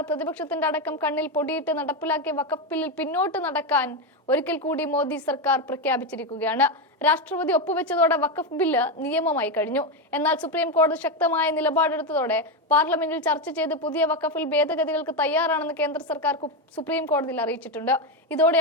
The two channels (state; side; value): normal; both; correlation 0.10